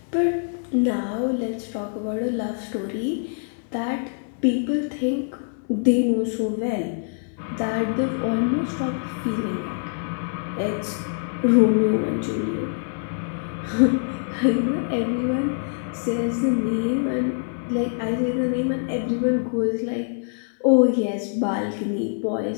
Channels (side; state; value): right; silent; 60 dB below the other